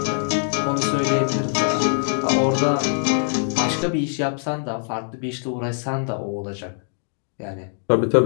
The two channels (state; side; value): silent; right; digital silence